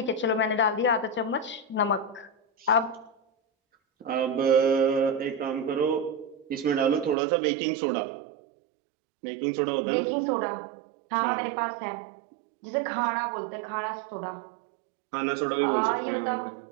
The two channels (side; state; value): left; drops out; at 7.2 s